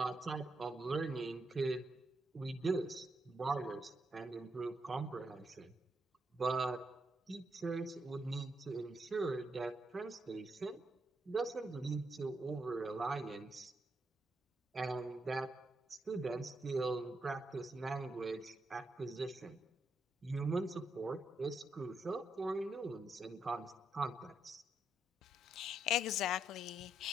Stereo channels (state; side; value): normal; both; correlation 0.79